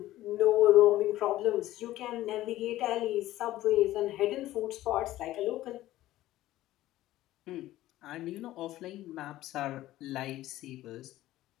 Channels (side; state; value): right; quieter; 15.3 dB